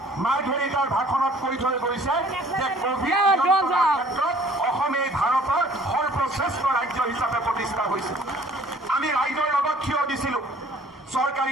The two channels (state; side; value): normal; both; correlation 0.54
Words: মাৰ্ঘেৰিটাৰ ভাষণত কৈ থৈ গৈছে যে কোভিড ক্ষেত্ৰত অসমে ভাৰতৰ সৰ্বশ্ৰেষ্ঠ ৰাজ্য হিচাপে প্ৰতিষ্ঠা হৈছে। আমি ৰাইজৰ লগত থিয় দিছিলোঁ।